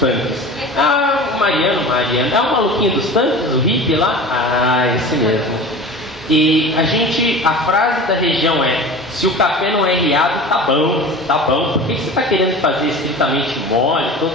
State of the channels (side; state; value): both; normal; correlation 0.35